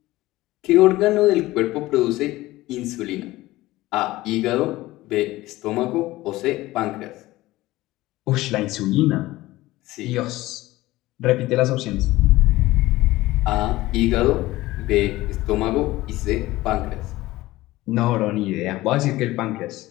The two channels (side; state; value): right; quieter; 17.9 dB